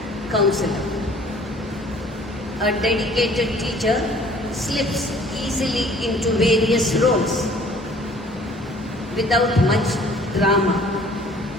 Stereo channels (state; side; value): normal; both; correlation 0.54